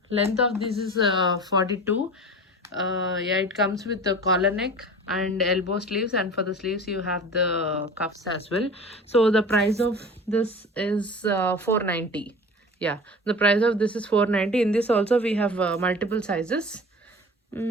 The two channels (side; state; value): both; normal; correlation 0.37